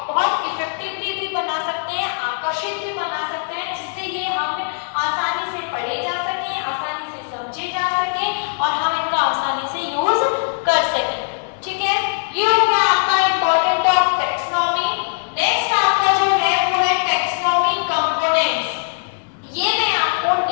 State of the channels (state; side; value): silent; right; digital silence